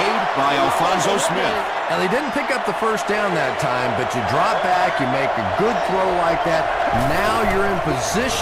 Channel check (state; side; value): identical; both; correlation 1.00